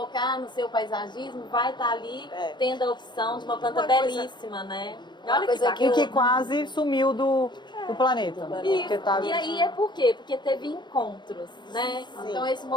no seu paisagismo, vai estar ali tendo a opção de uma planta belíssima, né? Olha que quase sumiu do planeta. E aí por quê? Porque teve encontros, né? Sim. Então esse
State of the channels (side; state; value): right; late; 0.22 ms